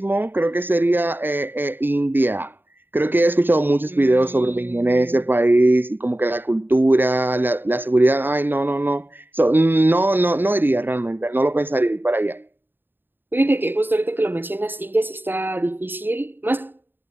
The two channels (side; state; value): left; late; 0.096 ms